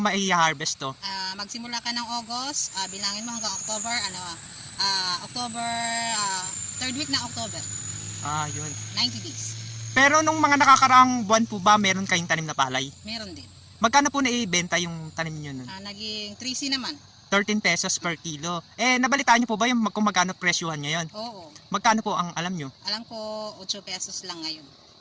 to? Magsimula ka ng August, bilangin mo hanggang October, October, third week ng October. Yun. 90 days. Pero nung mga nakakaraang buwan po ba, meron kayong tanim na palay? Meron din. Magkano po naibenta yung tanim nyo nun? Naging 3C naman. 13 pesos per kilo. Nabalitaan nyo po ba yung kung magkano presyuhan ngayon? Oo. Magkano po ang alam nyo? Alam ko, 8 pesos lang ngayon.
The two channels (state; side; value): identical; both; correlation 1.00